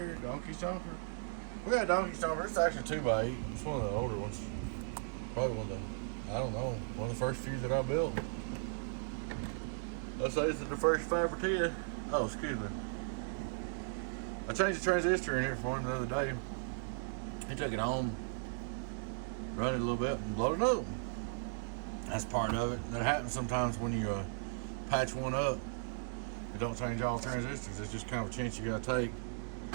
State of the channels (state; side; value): silent; left; digital silence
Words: Donkey Stomper. We got a Donkey Stomper. It's actually 2x8. It's one of the older ones. Probably one of the, I don't know, one of the first few that I built. Let's say it's the first 5 or 10. Oh, excuse me. I changed the transistor in here for him the other day. He took it home, run it a little bit, and blowed it up. That's part of it. That happens sometimes when you patch one up. It don't change all transistors. It's just kind of a chance you gotta take,